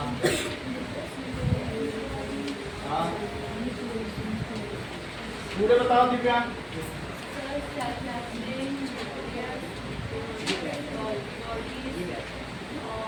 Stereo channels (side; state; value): both; identical; correlation 1.00